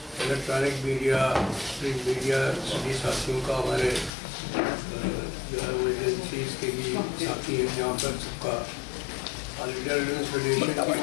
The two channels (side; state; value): right; drops out; at 4.1 s